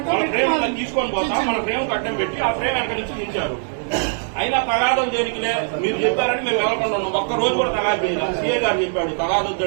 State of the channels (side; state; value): left; silent; digital silence